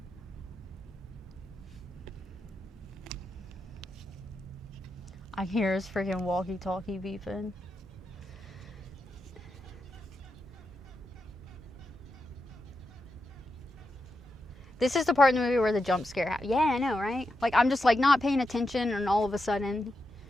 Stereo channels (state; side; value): normal; both; correlation 0.87